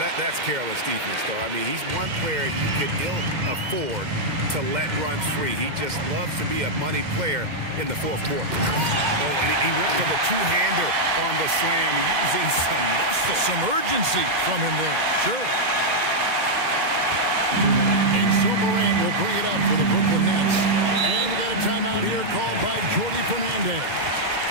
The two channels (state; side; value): late; left; 2.0 ms